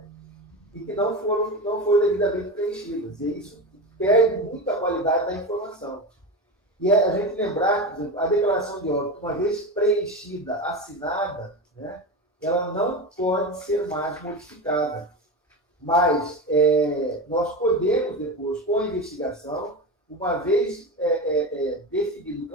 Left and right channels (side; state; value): both; normal; correlation 0.22